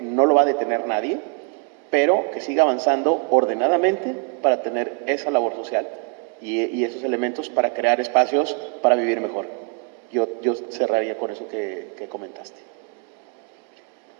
no lo va a detener nadie, pero que siga avanzando ordenadamente para tener esa labor social y esos elementos para crear espacios para vivir mejor. Yo cerraría con eso que comentaste.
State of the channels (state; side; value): quieter; left; 37.5 dB